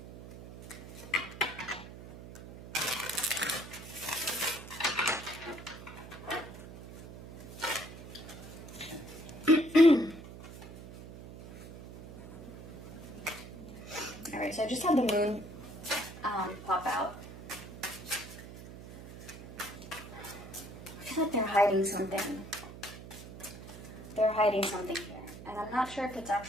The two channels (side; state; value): right; noise; hum, 14 dB below the sound